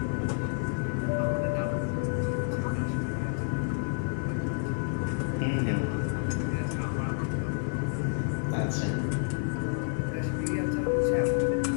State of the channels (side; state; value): right; silent; digital silence